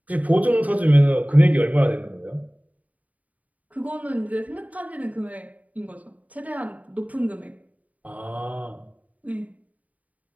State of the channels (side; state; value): left; late; 0.072 ms